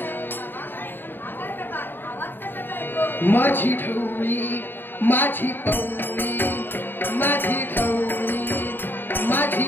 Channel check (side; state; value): right; late; 0.095 ms